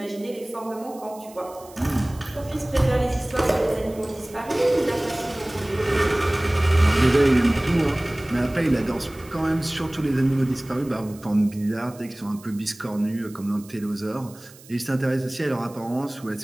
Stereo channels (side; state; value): right; noise; hiss, 22 dB below the sound